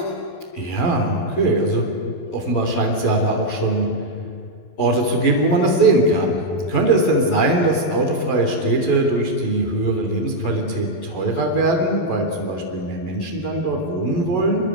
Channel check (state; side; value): late; right; 12 ms